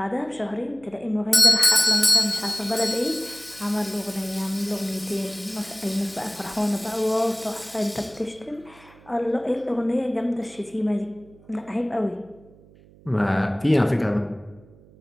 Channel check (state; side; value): noise; right; hum, 25 dB below the sound